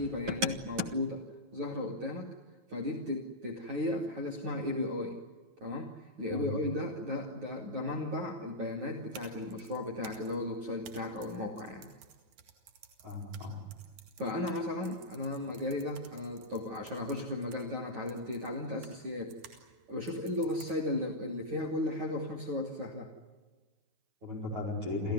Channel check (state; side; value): late; left; 9.3 ms